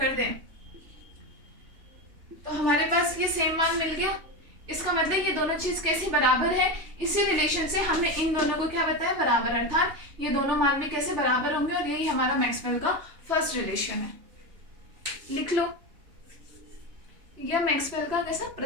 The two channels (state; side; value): late; left; 3.3 ms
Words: दें तो हमारे पास ये सेम मान मिल गया। इसका मतलब ये दोनों चीज कैसे बराबर है, इसी रिलेशन से हमने इन दोनों को क्या बताया, बराबर, अर्थात ये दोनों मान भी कैसे बराबर होंगे, और यही हमारा मैक्सवेल का फर्स्ट रिलेशन है। लिख लो, यह मैक्सवेल का कैसा